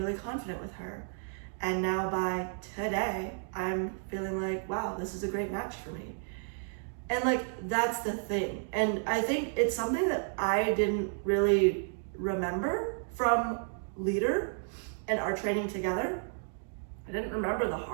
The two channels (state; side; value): silent; left; 56 dB below the other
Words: confident with her. And now by today, I'm feeling like, wow, this is a great match for me. And like, that's the thing. And I think it's something that I didn't really remember from Leader and our training together. I didn't remember the